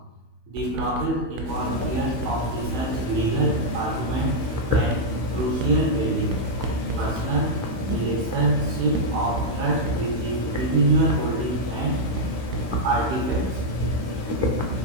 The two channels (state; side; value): late; left; 16 ms